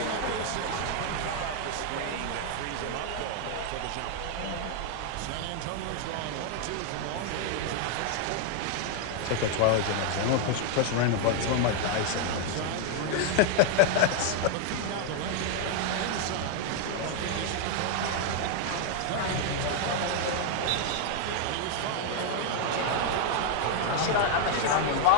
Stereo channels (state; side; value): different; both; correlation 0.00